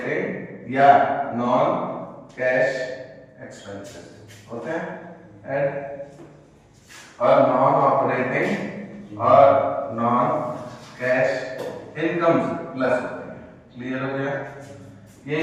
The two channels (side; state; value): both; identical; correlation 1.00